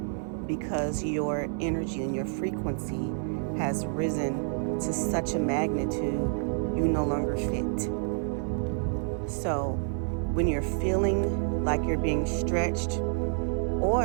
because your energy and your frequency has risen to such a magnitude you no longer fit. So when you're feeling like you're being stretched,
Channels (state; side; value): silent; left; 59 dB below the other